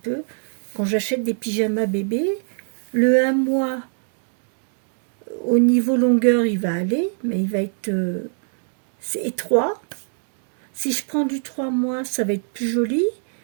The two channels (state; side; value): silent; left; 63 dB below the other